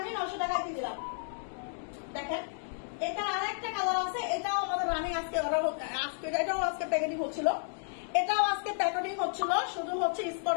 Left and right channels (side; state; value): right; silent; digital silence